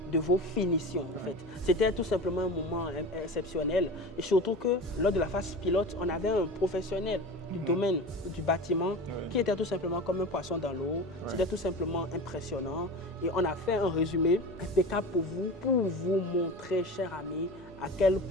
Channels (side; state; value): both; normal; correlation 0.31